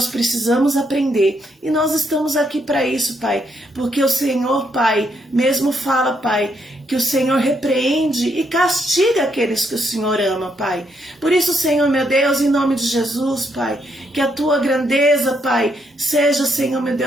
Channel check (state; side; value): normal; both; correlation 0.76